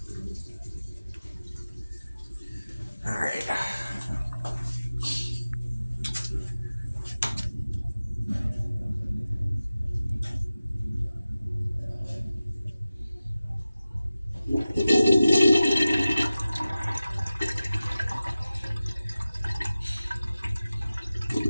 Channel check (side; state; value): both; inverted; correlation -0.95